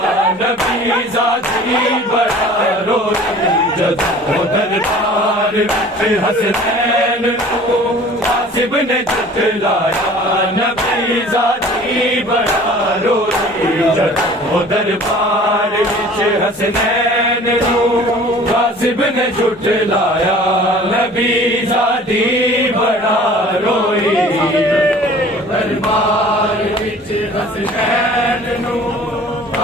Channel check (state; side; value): normal; both; correlation 0.47